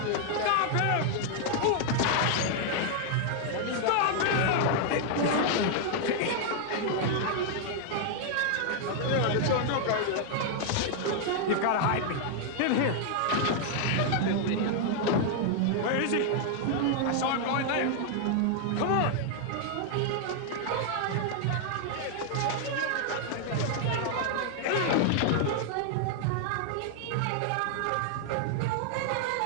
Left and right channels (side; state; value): both; different; correlation 0.00